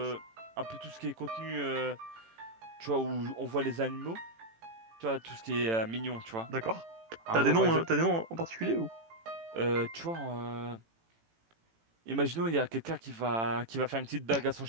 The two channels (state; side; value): late; left; 18 ms